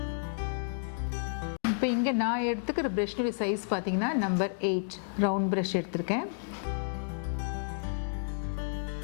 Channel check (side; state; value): right; silent; digital silence